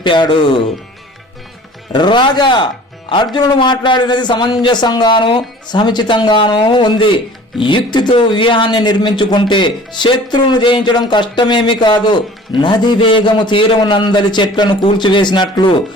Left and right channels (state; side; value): normal; both; correlation 0.46